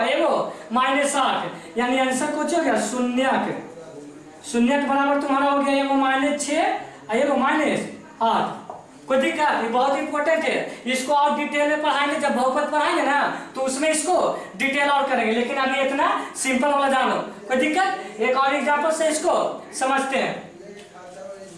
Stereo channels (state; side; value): identical; both; correlation 1.00